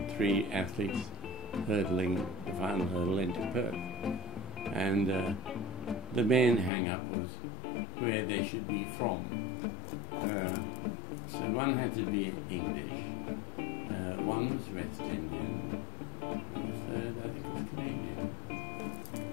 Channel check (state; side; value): drops out; right; at 6.7 s